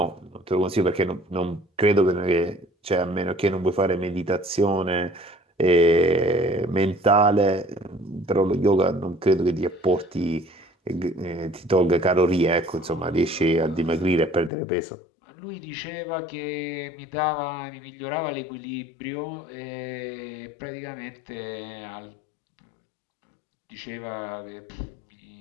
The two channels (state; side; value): drops out; right; at 14.5 s